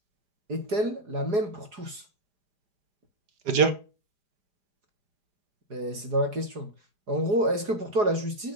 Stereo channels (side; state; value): left; late; 4.8 ms